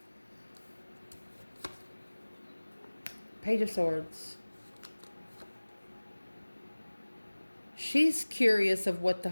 Page of Swords. She's curious of what the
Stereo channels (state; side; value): inverted; both; correlation -1.00